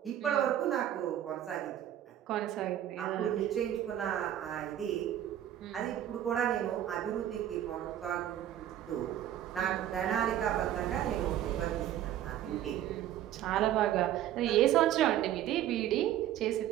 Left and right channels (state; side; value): quieter; left; 11.7 dB